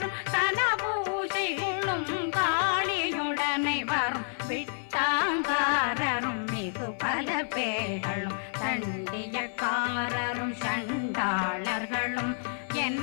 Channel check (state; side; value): silent; right; 58 dB below the other